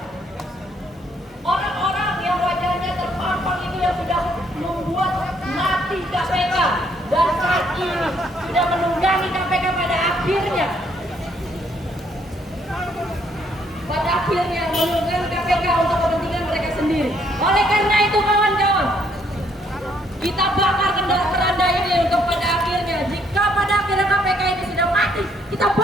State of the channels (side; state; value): both; normal; correlation 0.68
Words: orang-orang yang wajahnya terpampang itu yang sudah membuat mati KPK dan saat ini sudah menunggangi KPK pada akhirnya menunggangi KPK untuk kepentingan mereka sendiri. Oleh karena itu kawan-kawan, kita bakar keranda ini untuk pada akhirnya, jika pada akhirnya KPK ini sudah mati, kita